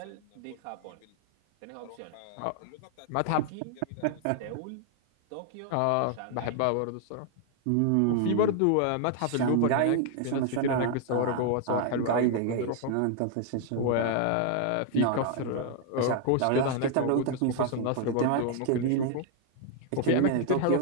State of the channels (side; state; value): both; different; correlation 0.00